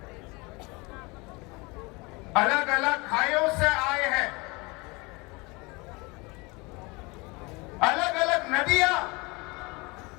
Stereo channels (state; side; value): quieter; right; 26.1 dB